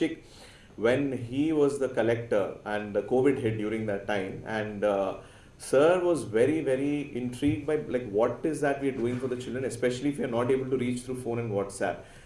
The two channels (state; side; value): identical; both; correlation 1.00